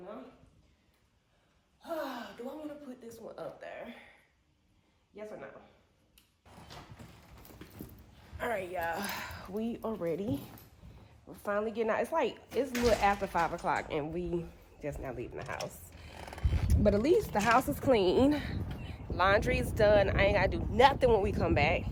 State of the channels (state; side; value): identical; both; correlation 1.00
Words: know? Do I want to put this one up there? Yes or no? All right, y'all. We are ready. We're finally getting out. It's a little after 5 o'clock and we just now leaving the house. But at least the house is clean. Laundry is done. I ain't got to do nothing when we come back.